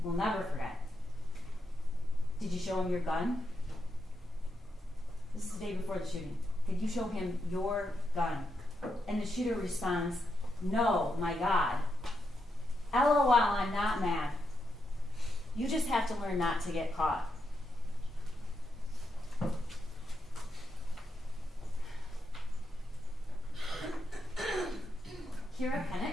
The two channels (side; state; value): both; normal; correlation 0.83